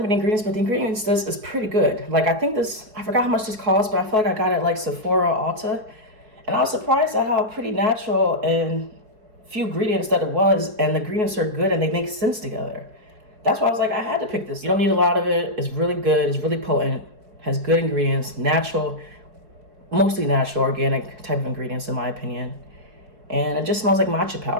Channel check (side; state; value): left; late; 4.7 ms